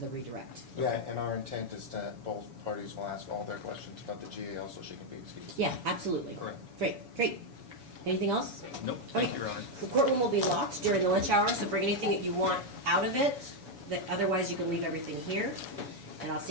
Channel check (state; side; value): late; left; 7.1 ms